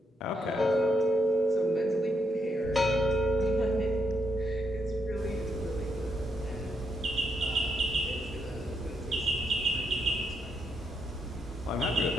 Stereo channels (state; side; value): normal; both; correlation 0.78